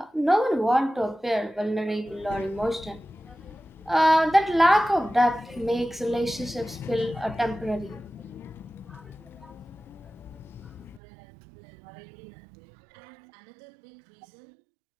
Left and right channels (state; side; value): drops out; left; at 11.0 s